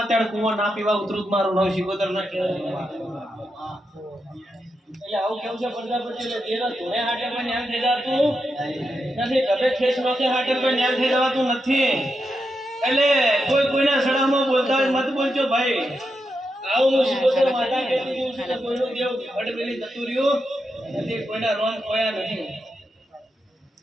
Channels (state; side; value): normal; both; correlation 0.85